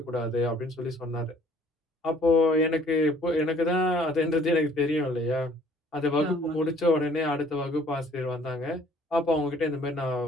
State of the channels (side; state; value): both; normal; correlation 0.57